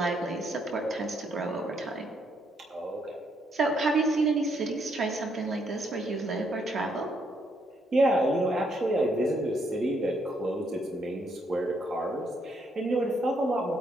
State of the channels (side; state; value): both; normal; correlation 0.74